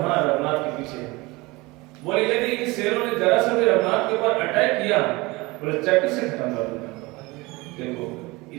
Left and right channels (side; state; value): left; quieter; 22.9 dB